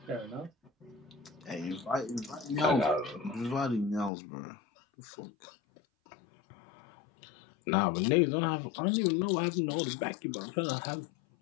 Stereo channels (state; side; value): drops out; right; at 4.1 s